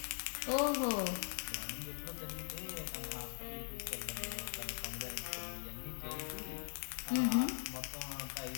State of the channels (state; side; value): silent; right; digital silence